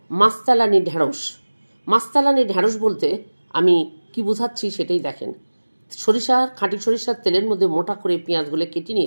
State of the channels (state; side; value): inverted; both; correlation -1.00